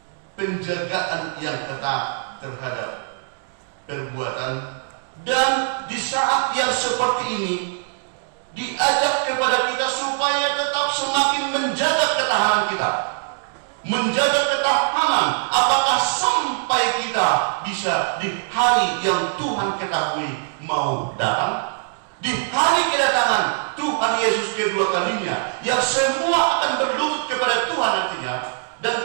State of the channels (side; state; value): left; silent; digital silence